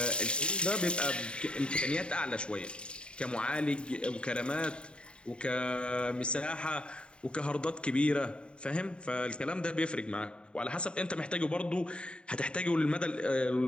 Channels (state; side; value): late; right; 0.053 ms